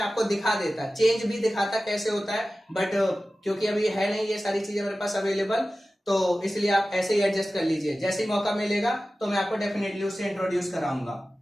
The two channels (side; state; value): both; normal; correlation 0.95